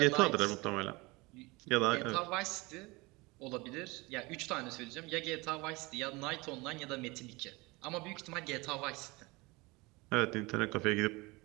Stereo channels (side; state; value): left; quieter; 24.1 dB